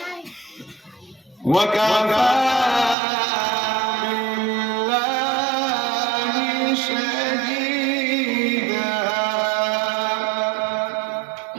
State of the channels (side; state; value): left; drops out; at 3.0 s